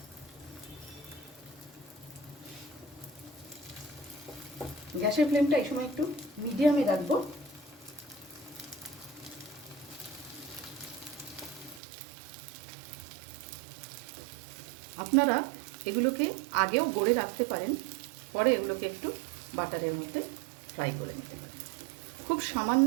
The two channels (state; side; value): drops out; left; at 11.8 s